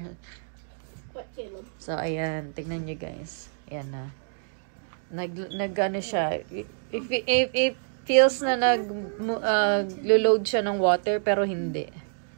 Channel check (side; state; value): left; silent; digital silence